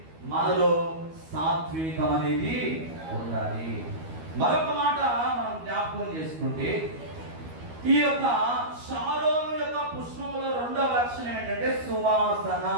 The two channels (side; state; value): left; late; 12 ms